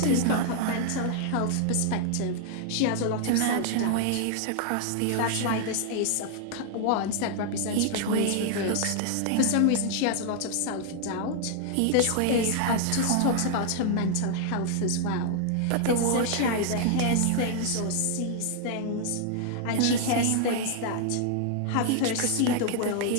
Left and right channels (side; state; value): both; different; correlation 0.00